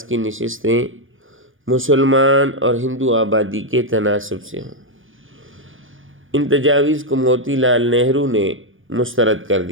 کی نشستیں مسلمان اور ہندو آبادی کے تناسب سے ہوں۔ ان تجاویز کو موتی لال نہرو نے مسترد کر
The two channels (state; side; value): late; left; 0.58 ms